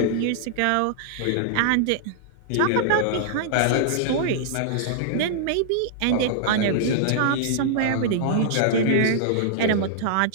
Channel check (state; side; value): different; both; correlation -0.01